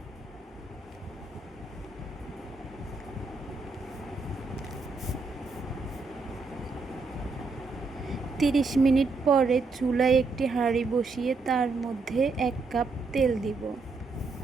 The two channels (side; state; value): left; quieter; 4.0 dB